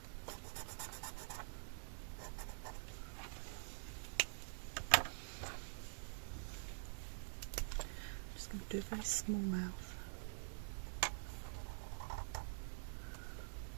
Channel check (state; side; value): silent; left; digital silence